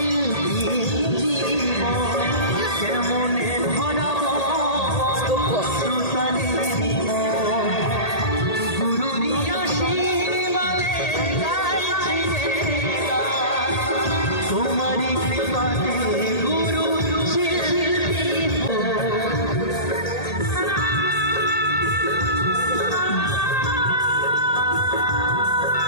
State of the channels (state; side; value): late; right; 1.8 ms